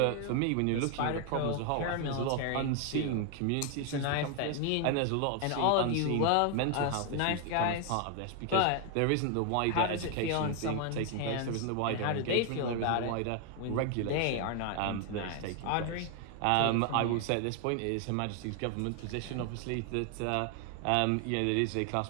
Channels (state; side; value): different; both; correlation 0.00